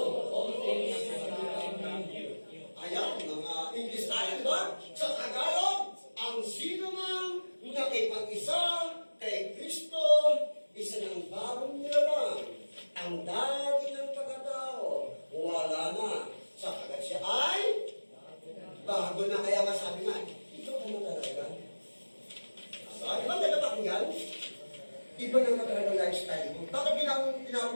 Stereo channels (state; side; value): inverted; both; correlation -1.00